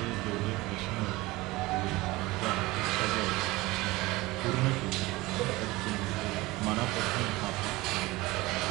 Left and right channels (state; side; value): quieter; left; 20.5 dB